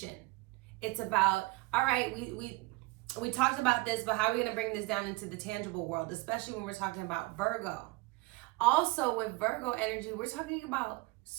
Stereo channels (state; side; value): quieter; left; 22.9 dB